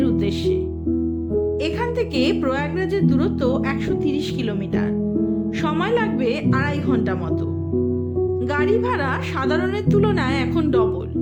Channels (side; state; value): both; identical; correlation 1.00